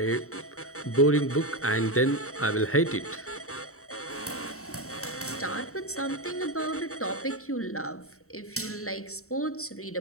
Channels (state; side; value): late; right; 0.64 ms